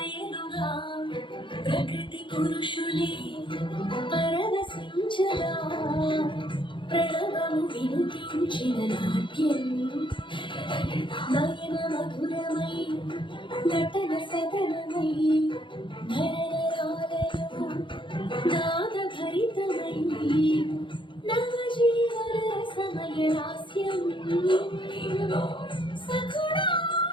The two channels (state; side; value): late; right; 0.24 ms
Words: ప్రకృతి పురుషులే పరవశించగా ప్రణవము వినిపించిన నాట్యం నయన మధురమై నటన సదనమై నరనరాలలో నాదభరితమై నవజీవన సమయ లాస్యం సఖుడా